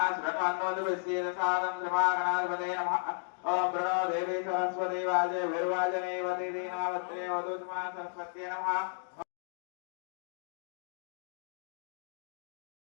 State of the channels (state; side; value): silent; right; digital silence